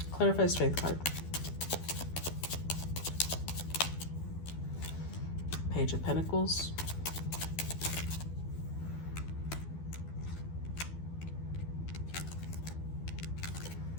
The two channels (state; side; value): late; right; 12 ms